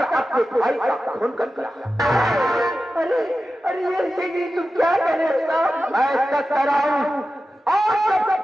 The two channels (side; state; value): both; normal; correlation 0.93